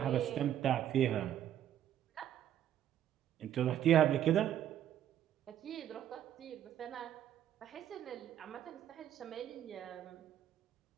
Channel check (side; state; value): left; quieter; 10.9 dB